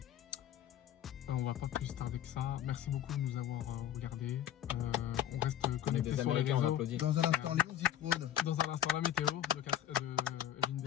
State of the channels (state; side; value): quieter; right; 10.9 dB